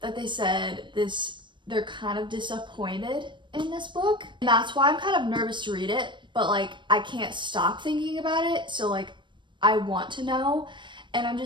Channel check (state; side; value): late; left; 0.23 ms